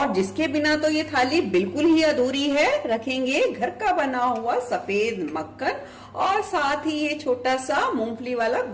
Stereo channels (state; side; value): identical; both; correlation 1.00